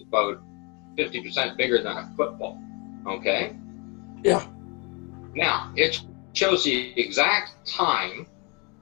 about 50% bigger than a football, okay? Yeah. Now, it shows the exact time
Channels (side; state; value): right; quieter; 30.5 dB